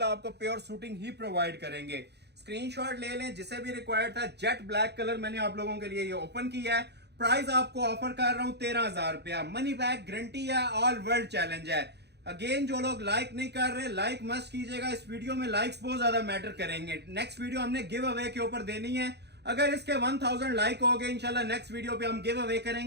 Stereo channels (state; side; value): late; left; 0.49 ms